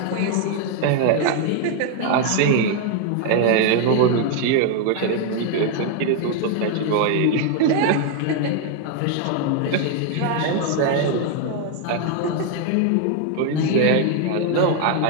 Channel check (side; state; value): both; different; correlation 0.00